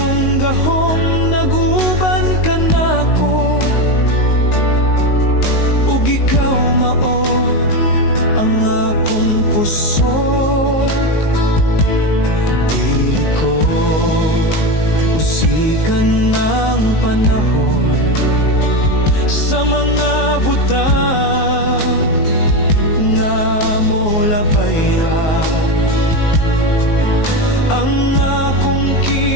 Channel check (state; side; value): late; right; 19 ms